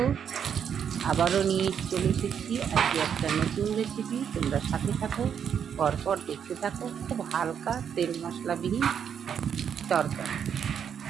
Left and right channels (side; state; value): left; quieter; 8.0 dB